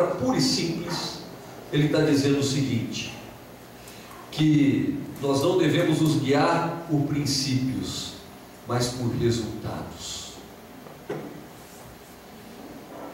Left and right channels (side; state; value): both; identical; correlation 1.00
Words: pura e simples, ele está dizendo o seguinte: que nós não devemos nos guiar por princípios, mas por resultados.